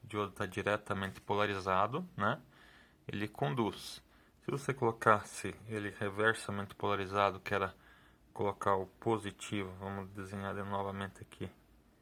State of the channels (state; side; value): identical; both; correlation 1.00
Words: diodo está diretamente polarizado, né? Ele conduz. Se você colocasse ele reversamente polarizado, que era colocar o positivo, vamos desenhar novamente aqui